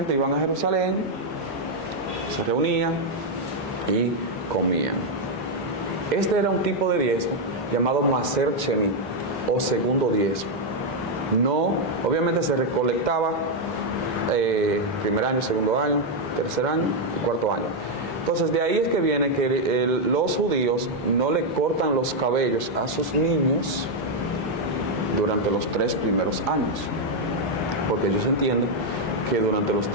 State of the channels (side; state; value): both; normal; correlation 0.00